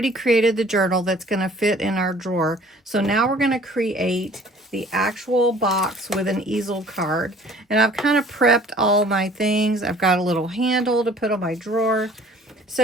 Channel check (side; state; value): both; normal; correlation 0.52